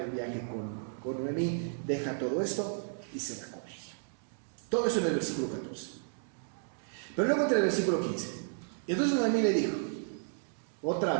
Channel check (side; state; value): left; silent; digital silence